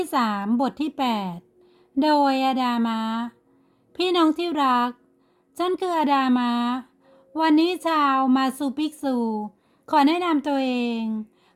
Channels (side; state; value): both; identical; correlation 1.00